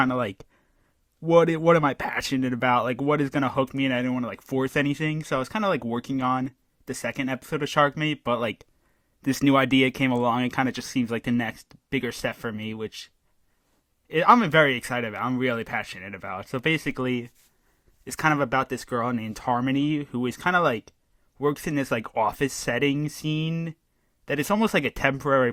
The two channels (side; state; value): both; identical; correlation 1.00